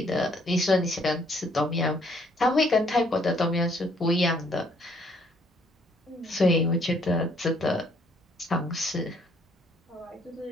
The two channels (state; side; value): normal; both; correlation 0.65